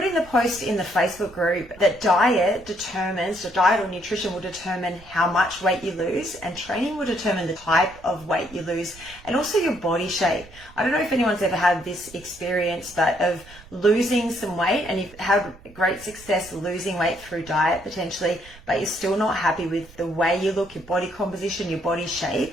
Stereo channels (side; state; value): right; noise; rumble, 21 dB below the sound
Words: in the post in the Facebook group that diet or nutrition will determine how much weight you lose, and training will determine the type of weight you lose and also your body shape. I don't know if anyone's ever had this experience, but of losing some weight, and you've had great success losing weight through diet potentially, but you're still not happy with the way you look, your body composition, your body